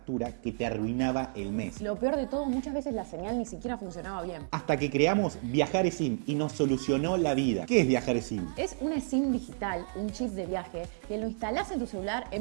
que te arruinaba el mes. Lo peor de todo, muchas veces la señal ni siquiera funcionaba bien. Hasta que creamos Viajar eSIM y nos solucionó la vida. ¿Qué es Viajar eSIM? Es una SIM digital, un chip de viaje, que lo instalás en tu celular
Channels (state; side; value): silent; left; 56 dB below the other